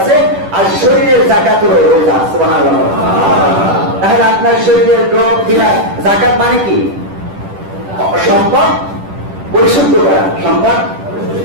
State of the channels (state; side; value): late; left; 10 ms